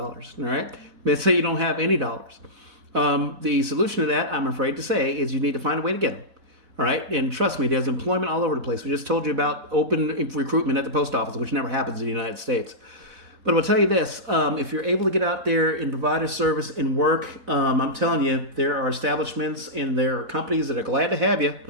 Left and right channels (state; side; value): late; left; 4.0 ms